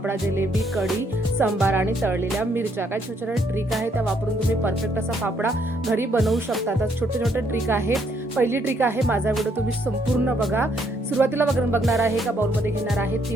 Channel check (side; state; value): both; normal; correlation 0.70